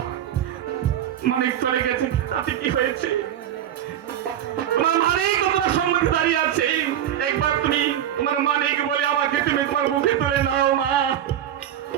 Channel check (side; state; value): left; quieter; 10.9 dB